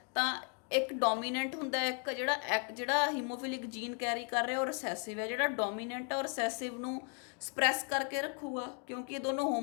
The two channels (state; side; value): quieter; right; 38.8 dB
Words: ਤਾਂ ਇੱਕ ਡੋਮੀਨੈਂਟ ਹੁੰਦਾ, ਇੱਕ ਜਿਹੜਾ ਹੀਮੋਫਿਲਿਕ ਜੀਨ ਕੈਰੀ ਕਰ ਰਿਹਾ ਉਹ ਰਿਸੈਸਿਵ ਹੈ। ਜਿਹੜਾ ਡੋਮੀਨੈਂਟ ਆ ਉਹ ਰਿਸੈਸਿਵ ਨੂੰ ਸਪਰੈਸ ਕਰਕੇ ਰੱਖੂਗਾ ਕਿਉਂਕਿ ਇਹ ਦੋਨੋਂ